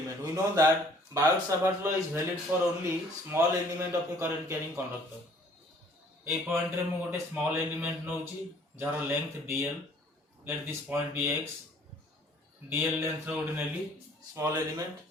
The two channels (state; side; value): normal; both; correlation 0.57